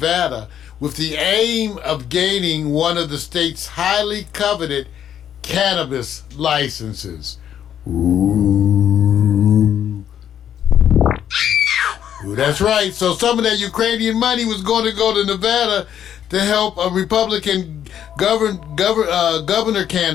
with the aim of gaining one of the state's highly coveted cannabis licenses. Ooh, that's right. So some of that Ukrainian money was going to go to Nevada to help a Republican governor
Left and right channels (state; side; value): quieter; right; 9.7 dB